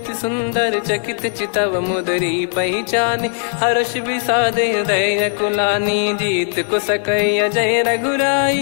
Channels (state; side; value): silent; right; digital silence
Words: सुंदर। चकित चितव मुदरी पहचानी, हर्ष विषाद हृदय कुलानी। जीत को सकय जय